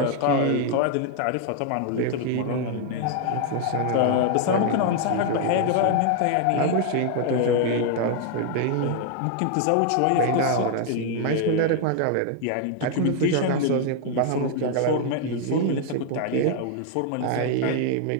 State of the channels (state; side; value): different; both; correlation 0.00